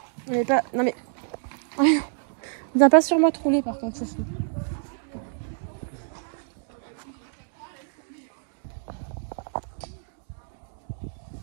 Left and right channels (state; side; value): silent; left; 60 dB below the other